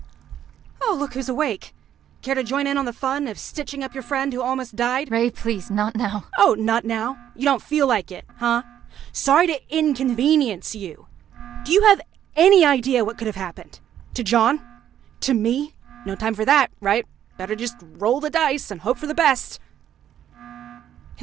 Oh, look who's awake. Care to join in on the fun of stitching up your friend who almost died? Ray, please, not now. Oh, not now? You don't feel like it, huh? Sorry to inconvenience you. Do you have any idea what could have happened? To John? To me? No time for that, right? Better just roll the dice and hope for the best.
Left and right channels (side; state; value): left; quieter; 10.5 dB